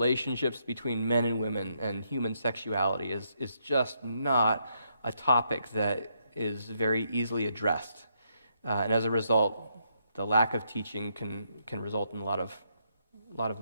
between men and women and human sexuality is just not a topic that is very easily addressed. And as a result, the lack of teaching can result in a lot of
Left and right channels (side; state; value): both; inverted; correlation -0.76